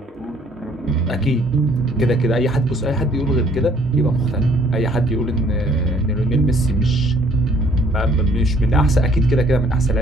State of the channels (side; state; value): both; normal; correlation 0.61